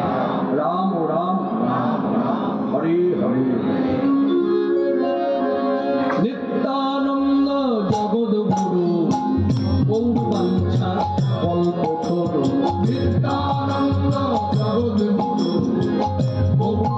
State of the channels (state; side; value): identical; both; correlation 1.00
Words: রাম রাম হরে হরে নিত্যানন্দ জগদ্গুরু গৌরবাঞ্ছা কল্পতরু নিত্যানন্দ জগদ্গুরু